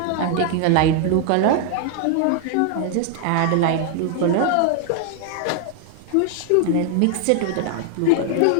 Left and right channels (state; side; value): different; both; correlation 0.00